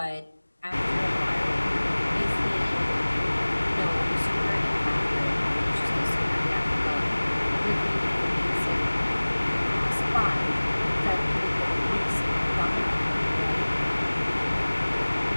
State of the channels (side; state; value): both; inverted; correlation -1.00